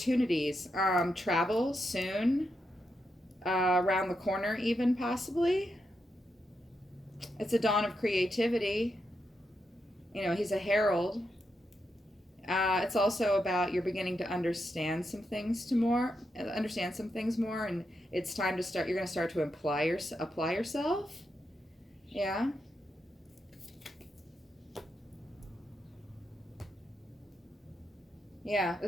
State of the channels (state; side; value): normal; both; correlation 0.84